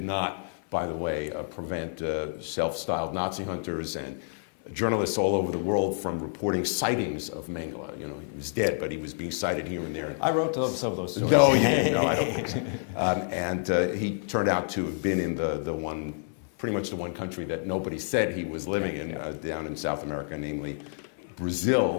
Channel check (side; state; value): right; silent; 57 dB below the other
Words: not, by the way, prevent self-styled Nazi hunters and journalists all over the world from reporting sightings of Mengele. He was dead, but he was being sighted here and there. I wrote some of those. Oh, yeah, and he turned out to have been in pretty much the one country that nobody said he was living in, down in South America, namely